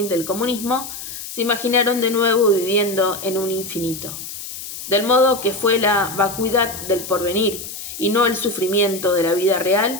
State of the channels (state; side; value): noise; left; hiss, 10 dB below the sound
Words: del comunismo, se imaginaron de nuevo viviendo en un infinito. Del modo que fue la vacuidad del porvenir y no el sufrimiento de la vida